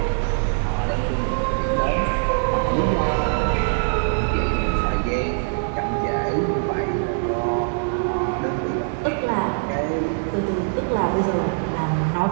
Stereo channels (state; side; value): silent; left; digital silence